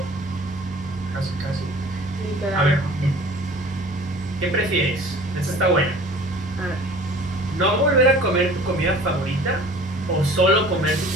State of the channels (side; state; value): both; normal; correlation 0.46